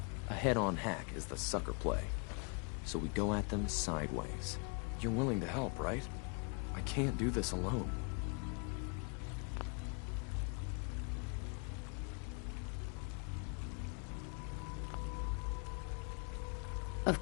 A head-on hack is the sucker play. So we go at them sideways. You're willing to help, right? I can't do this alone.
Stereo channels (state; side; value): quieter; right; 36.9 dB